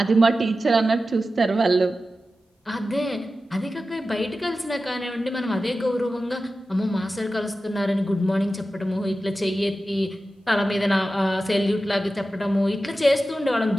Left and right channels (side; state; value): both; normal; correlation 0.93